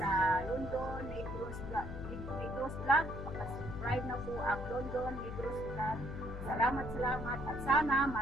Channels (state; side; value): noise; left; hum, 8 dB below the sound